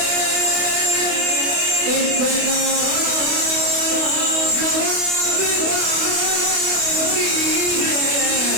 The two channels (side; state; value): left; late; 28 ms